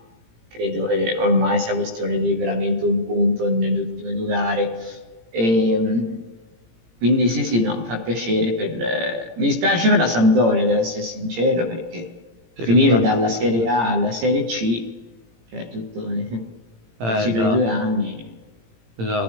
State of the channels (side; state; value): left; late; 18 ms